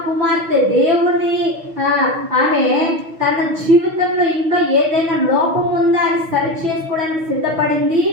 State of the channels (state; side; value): late; left; 6.3 ms